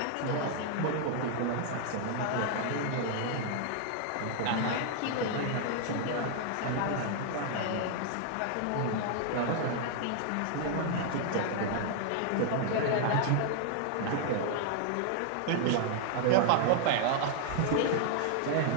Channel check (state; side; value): different; both; correlation 0.00